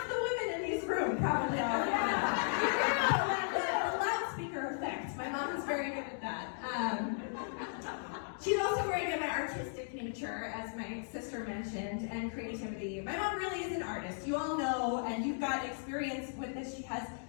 the women in this room probably already know. The loudspeaker effect. My mom is very good at that. She's also very good at artistic nature, as my sister mentioned, and creativity. My mom really is an artist. You all know, and you've got experience with this. She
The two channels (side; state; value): right; silent; digital silence